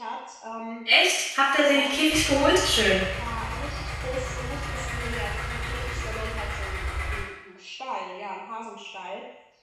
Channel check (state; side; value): identical; both; correlation 1.00